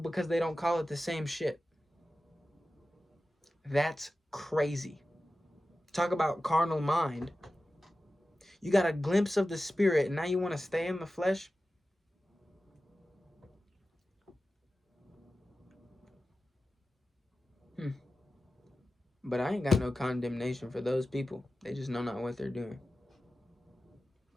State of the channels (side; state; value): both; normal; correlation 0.94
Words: they don't call it the same shit. That's crazy. Talk about carnal mind. You got a glimpse of the spirit and now you want to stay in the flesh? But I ain't got no condemnation for those people. They just know not what they're doing.